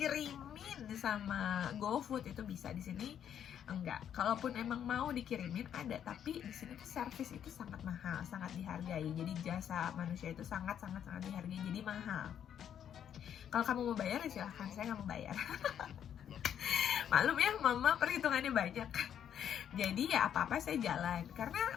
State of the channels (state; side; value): quieter; right; 9.3 dB